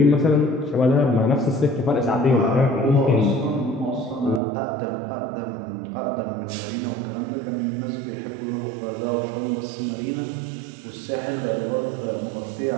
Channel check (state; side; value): drops out; left; at 4.4 s